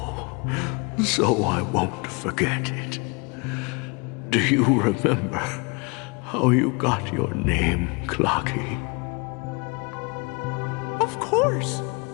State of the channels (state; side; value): quieter; right; 30.7 dB